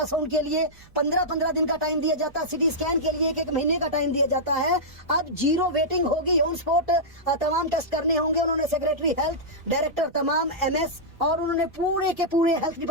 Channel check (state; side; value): noise; right; rumble, 26 dB below the sound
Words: के लिए 15 दिन का टाइम दिया जाता है, सीटी स्कैन के लिए 1 महीने का टाइम दिया जाता है, अब 0 वेटिंग होगी, ऑन स्पॉट तमाम टेस्ट करने होंगे। उन्होंने सेक्रेटरी हेल्थ, डायरेक्टर तमाम एमएस और उन्होंने पूरे के पूरे हेल्थ